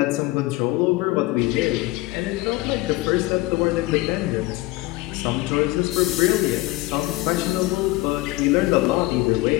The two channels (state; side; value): quieter; right; 19.8 dB